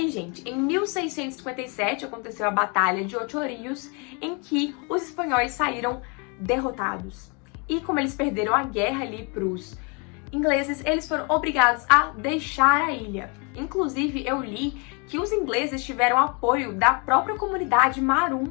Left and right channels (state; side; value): quieter; right; 33.2 dB